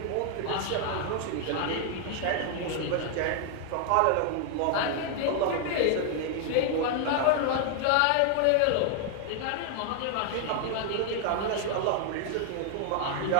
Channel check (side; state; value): both; different; correlation 0.00